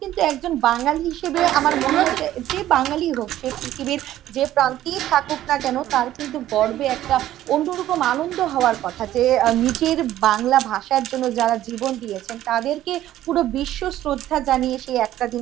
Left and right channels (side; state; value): left; quieter; 13.3 dB